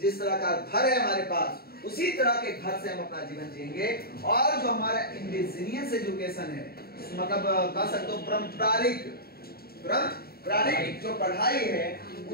जिस तरह का घर है हमारे पास, उसी तरह के घर से हम अपना जीवन जिएंगे। और जो हमारा इंडिजिनियस एजुकेशन है, मतलब कह सकते हो पारंपरिक जो पढ़ाई है,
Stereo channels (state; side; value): late; right; 0.45 ms